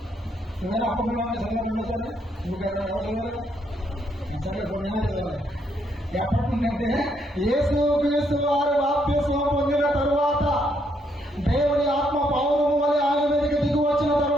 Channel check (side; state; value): both; normal; correlation 0.74